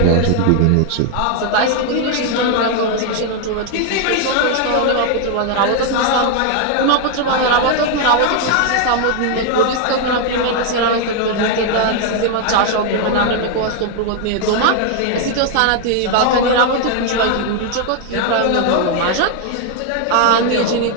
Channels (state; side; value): different; both; correlation 0.00